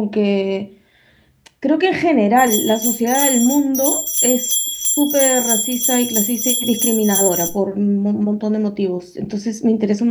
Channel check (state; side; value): identical; both; correlation 1.00